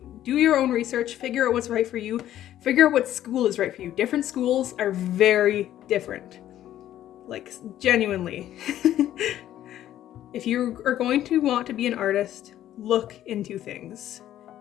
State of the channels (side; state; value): right; quieter; 12.3 dB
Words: do your own research, figure out what's right for you, figure out what school is right for you. Different schools are very different. Like, genuinely. If you are going to want to be an artist, look into things.